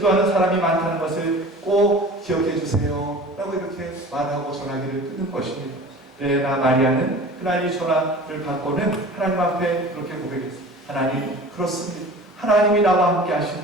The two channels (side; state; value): both; normal; correlation 0.40